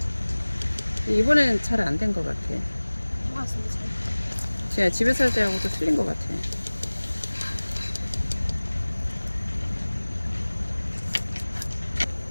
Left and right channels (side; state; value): both; inverted; correlation -1.00